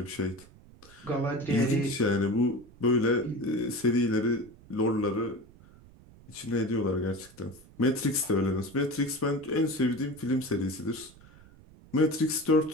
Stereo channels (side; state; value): right; noise; rumble, 23 dB below the sound